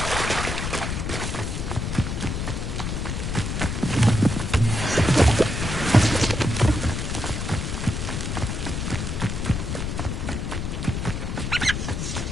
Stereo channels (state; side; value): noise; left; rumble, 2 dB below the sound